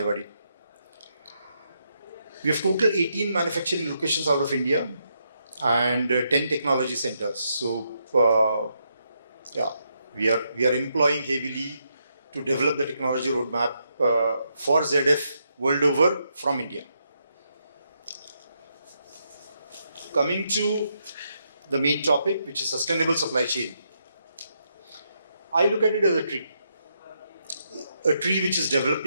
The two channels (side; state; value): both; inverted; correlation -0.79